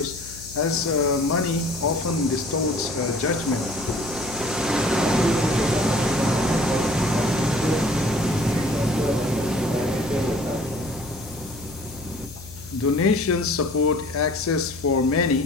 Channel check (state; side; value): noise; left; hum, 17 dB below the sound